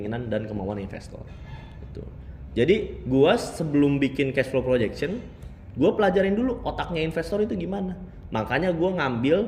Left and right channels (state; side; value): identical; both; correlation 1.00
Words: dan kemauan investor. Gitu. Jadi, gua sebelum bikin cash flow projection, gua pelajarin dulu otaknya investor itu gimana. Makanya gua